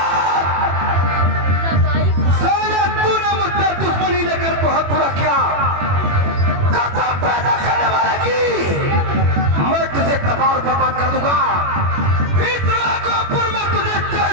दुश्मनी लेकर बहुत बुरा किया, कदम पैदा करने वाला की मैं तुझे तबाह और बर्बाद कर दूंगा। इस राघोपुर में तुझे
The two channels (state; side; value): late; left; 21 ms